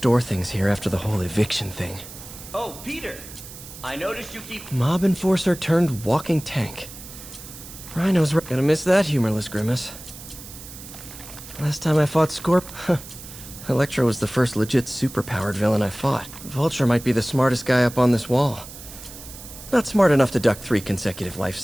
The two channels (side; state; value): right; noise; hiss, 15 dB below the sound